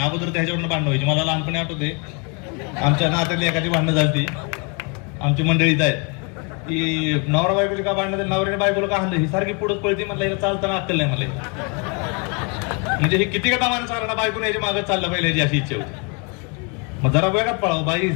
अगोदर त्याच्यावरनं भांडणं व्हायची. मला लहानपणी आठवते, आमच्या नात्यातली एखादी भांडणं झाली, आमची मंडळीत आहेत की नवरा बायकोची का भांडणं, नवऱ्याने बायकोला का हाणलं, ही सारखी पुढे पळते. म्हणलं हिला चालताना अक्कल नाही. म्हणजे हे किती का दामानं चालणार, बायकोने याच्या मागे चाललं पाहिजे याची अशी इच्छा होती. मग जरा वेगात पळावं.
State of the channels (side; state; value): right; quieter; 34.0 dB